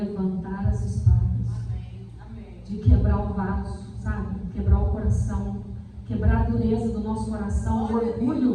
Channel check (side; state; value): both; identical; correlation 1.00